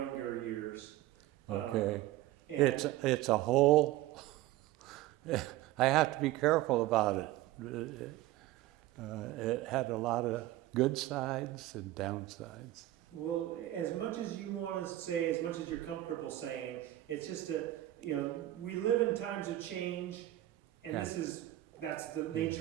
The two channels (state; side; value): quieter; left; 15.5 dB